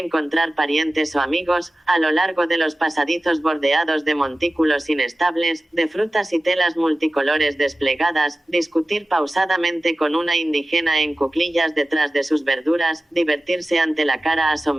parientes o amigos, a lo largo de los pasadizos bordeados de montículos inestables, de frutas y telas multicolores desplegadas, discutir pausadamente con una indígena en cuclillas detrás de sus verduras, divertirse ante la cara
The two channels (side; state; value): both; normal; correlation 0.96